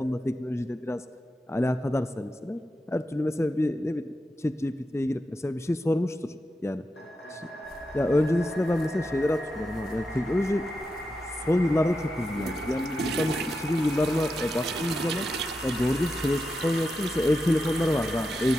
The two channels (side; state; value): both; normal; correlation 0.88